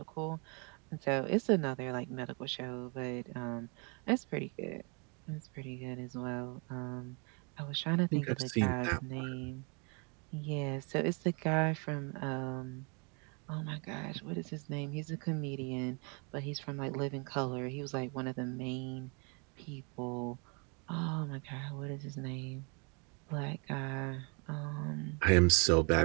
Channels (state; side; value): quieter; left; 34.0 dB